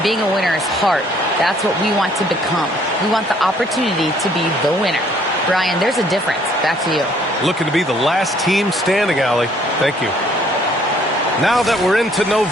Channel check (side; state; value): both; normal; correlation 0.62